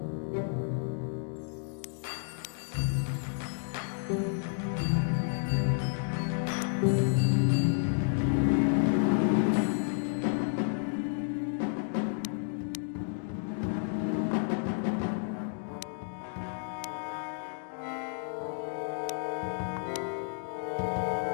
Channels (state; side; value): silent; right; digital silence